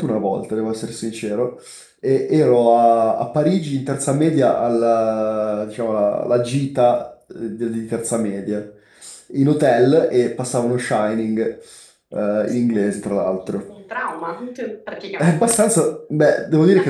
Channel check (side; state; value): both; identical; correlation 1.00